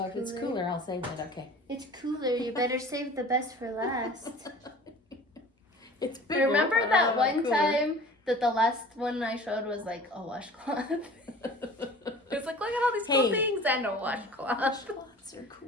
cooler. If it's cooler, I'll save it. Okay. It's cooler. You better save the best for last. It's bigger. Remember that one time that the last one I showed was like a washcloth? It's like, look at all these cool things and a washcloth. Washcloths are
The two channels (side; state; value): both; normal; correlation 0.43